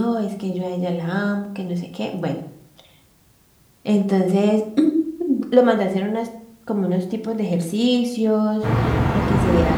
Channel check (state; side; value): identical; both; correlation 1.00